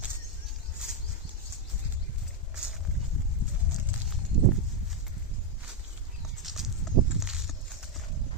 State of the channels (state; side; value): normal; both; correlation 0.02